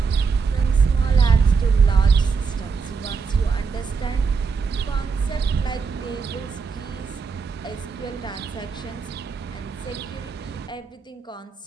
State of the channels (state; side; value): quieter; left; 5.3 dB